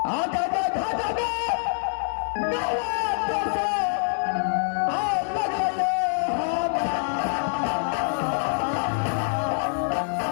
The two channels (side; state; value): right; silent; 61 dB below the other